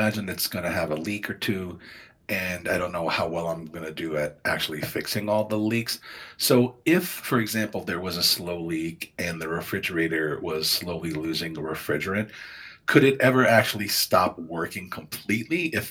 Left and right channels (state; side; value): identical; both; correlation 1.00